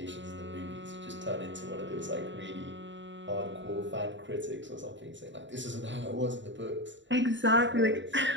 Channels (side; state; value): left; late; 0.54 ms